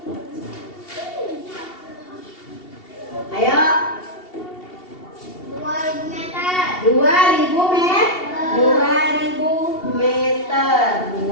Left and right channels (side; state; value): right; late; 2.7 ms